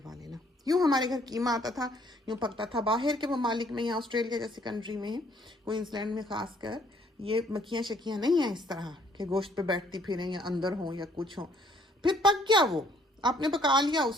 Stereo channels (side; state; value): both; normal; correlation 0.63